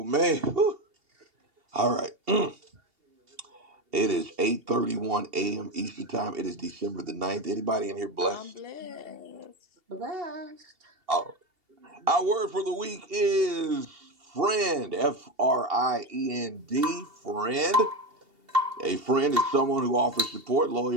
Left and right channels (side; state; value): left; late; 2.8 ms